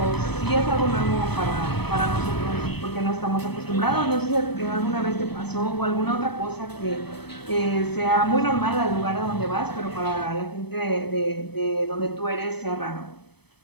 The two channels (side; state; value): right; late; 0.98 ms